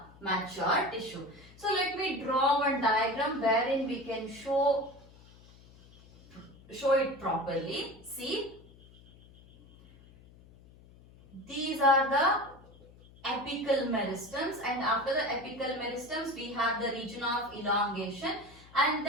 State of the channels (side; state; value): left; noise; hum, 23 dB below the sound